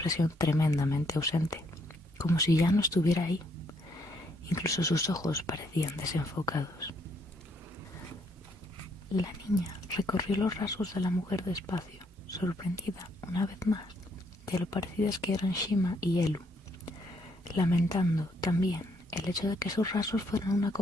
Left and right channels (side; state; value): both; normal; correlation 0.71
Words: tremendamente ausente, como si ya no estuviera ahí. Incluso sus ojos parecían desenfocados. La niña recorrió los rasgos de la mujer despacio, sorprendida una vez más de lo parecidas que eran Shima y Elu, lamentando también el hecho de que sus rasgos fueran una